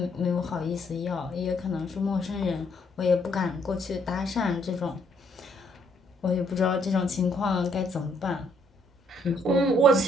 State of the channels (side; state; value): both; normal; correlation 0.69